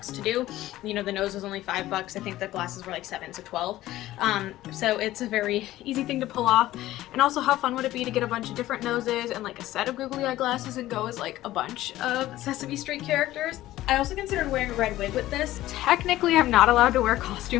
to do. You know, the nose was only 5 bucks. I think the glasses were like 7, so 12. So it's a very easy thing to pull off. And also, how fun would it be to get a bunch of different noses and like a set of googly eye glasses and go as like a bunch of Sesame Street characters? I also considered wearing a red wig with this. Technically, I'm not allowed to wear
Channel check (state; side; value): quieter; right; 15.4 dB